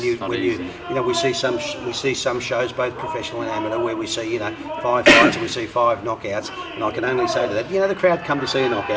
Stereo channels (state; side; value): identical; both; correlation 1.00